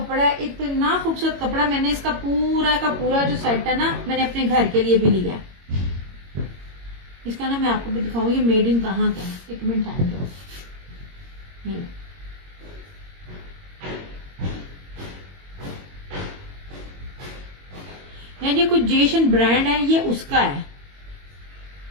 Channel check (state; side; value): late; left; 22 ms